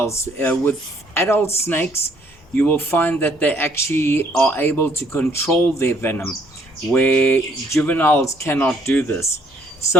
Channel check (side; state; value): both; normal; correlation 0.65